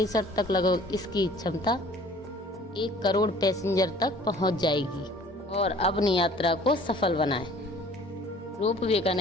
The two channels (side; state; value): both; normal; correlation 0.51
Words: तक लगभग इसकी क्षमता 1 करोड़ पैसेंजर तक पहुंच जाएगी। और अपनी यात्रा को सफल बनाएं। रोपवे का